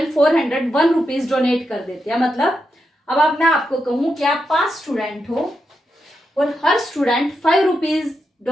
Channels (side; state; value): both; normal; correlation 0.85